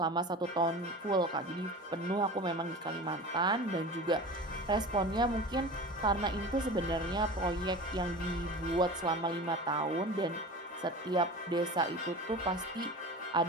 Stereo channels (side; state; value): both; normal; correlation 0.34